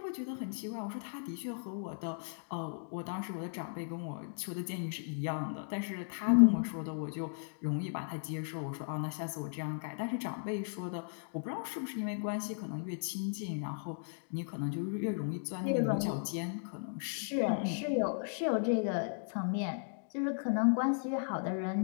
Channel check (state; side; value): silent; right; digital silence